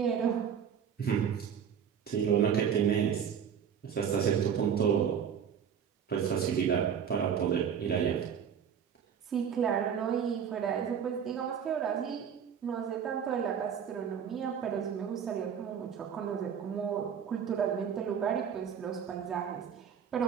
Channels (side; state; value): left; quieter; 7.9 dB